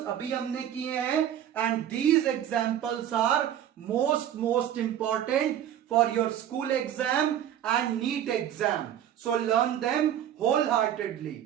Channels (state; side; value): quieter; left; 10.6 dB